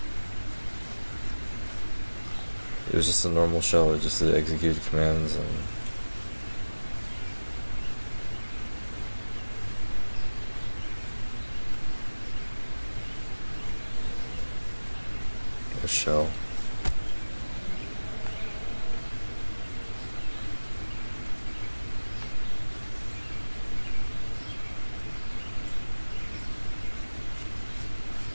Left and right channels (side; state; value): both; inverted; correlation -1.00